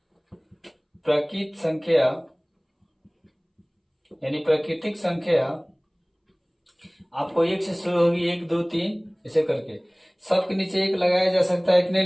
प्राकृतिक संख्या यानी प्राकृतिक संख्या आपको 1 से शुरू होगी, 1 2 3 ऐसे करके सबके नीचे 1 लगाया जा सकता है कि नहीं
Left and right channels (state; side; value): identical; both; correlation 1.00